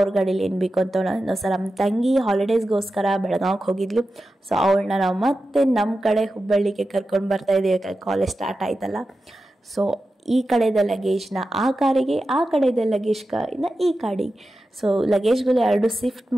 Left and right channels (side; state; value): both; normal; correlation 0.92